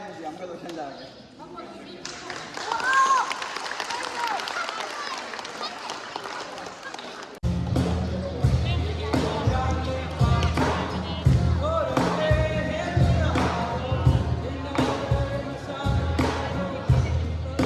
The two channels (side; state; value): both; identical; correlation 1.00